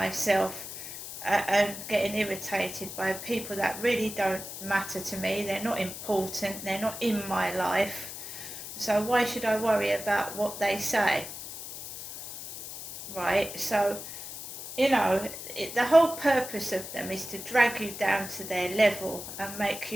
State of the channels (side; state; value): left; noise; hiss, 10 dB below the sound